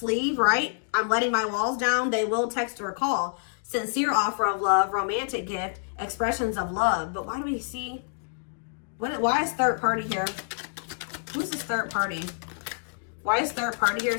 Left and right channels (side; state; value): right; silent; digital silence